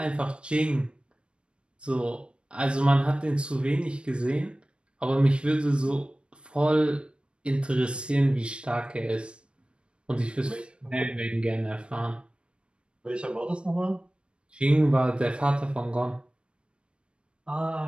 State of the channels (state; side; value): late; left; 0.057 ms